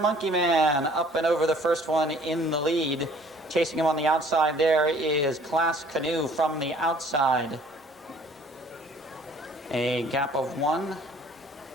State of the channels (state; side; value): normal; both; correlation 0.55